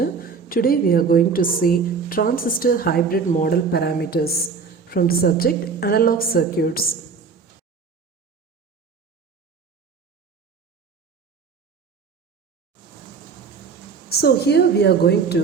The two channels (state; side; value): quieter; left; 5.3 dB